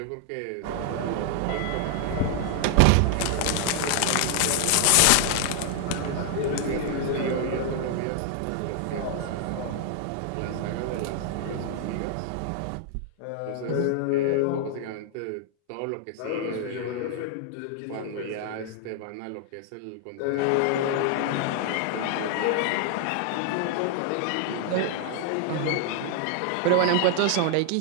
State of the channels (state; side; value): different; both; correlation 0.00